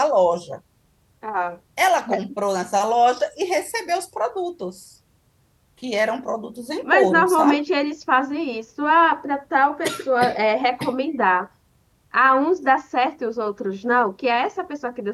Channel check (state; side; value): identical; both; correlation 1.00